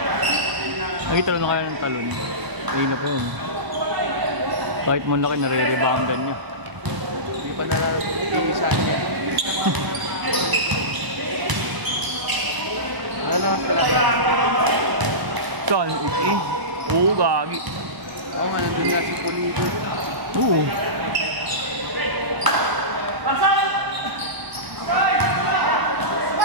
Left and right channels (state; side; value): late; left; 1.0 ms